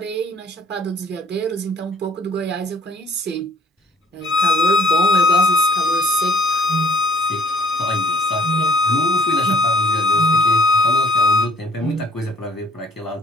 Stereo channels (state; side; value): normal; both; correlation 0.59